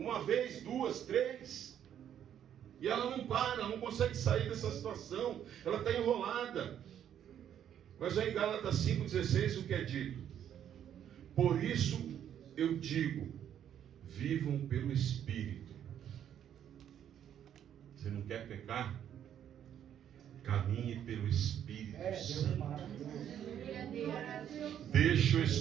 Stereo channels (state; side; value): quieter; left; 9.8 dB